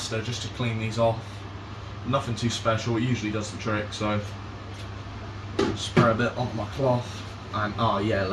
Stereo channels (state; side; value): identical; both; correlation 1.00